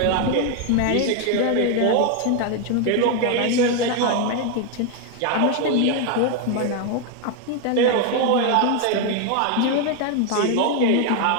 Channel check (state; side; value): different; both; correlation 0.01